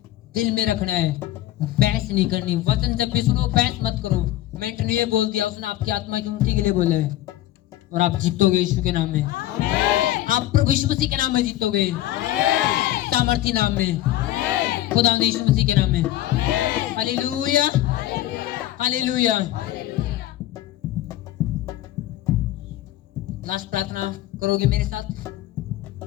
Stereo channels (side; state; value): right; quieter; 14.5 dB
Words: दिल में रखना है, बहस नहीं करनी। वचन जब भी सुनो बहस मत करो। मैंने तो ये बोल दिया, उसने आपकी आत्मा की उन्नति के लिए बोला है और आप जीतोगे यीशु के नाम में। आप प्रभु यीशु मसीह के नाम में जीतोगे, सामर्थी नाम में, खुदा यीशु मसीह के नाम में। Hallelujah, hallelujah. लास्ट प्रार्थना करोगे मेरे साथ?